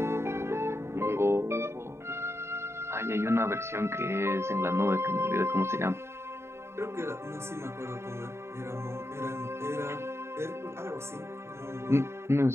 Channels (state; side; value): late; left; 0.13 ms